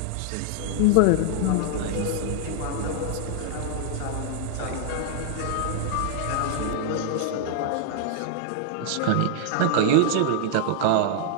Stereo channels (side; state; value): both; different; correlation -0.01